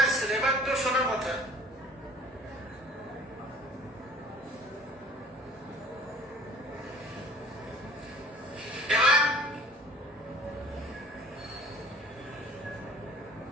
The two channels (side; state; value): both; normal; correlation 0.48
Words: আসছিল, এবার তো শোনার কথা।